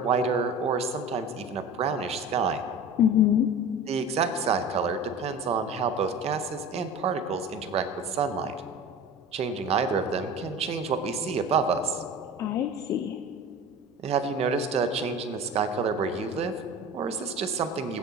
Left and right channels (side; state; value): both; normal; correlation 0.35